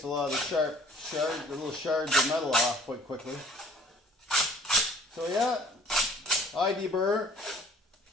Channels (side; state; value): both; normal; correlation 0.53